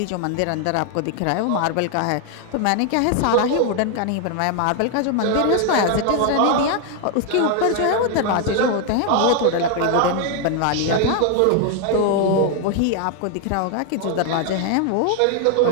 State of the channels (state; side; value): different; both; correlation 0.00